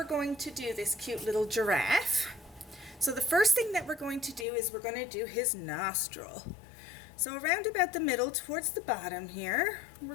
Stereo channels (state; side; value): drops out; right; at 4.5 s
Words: going to do this cute little giraffe. So the first thing that we're going to do is we're going to do his nostril. So around about the middle towards the bottom here, we're